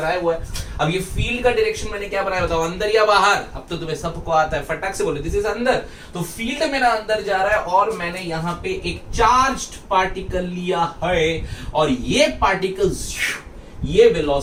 हुआ है। अब ये फील्ड का डायरेक्शन मैंने क्या बनाया, बताओ, अंदर या बाहर? अब तो तुम्हें सबको आता है, फटाक से बोलो, दिस इज अंदर। तो फील्ड मेरा अंदर जा रहा है और मैंने यहां पे एक चार्ज्ड पार्टिकल लिया है और ये पार्टिकल, ये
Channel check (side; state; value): both; identical; correlation 1.00